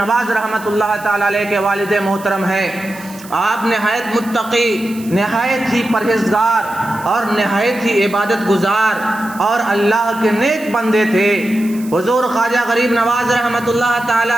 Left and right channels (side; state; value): right; noise; hiss, 19 dB below the sound